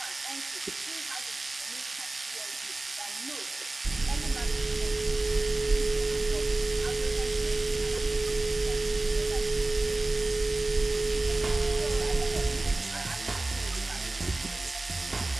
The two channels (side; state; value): left; quieter; 3.0 dB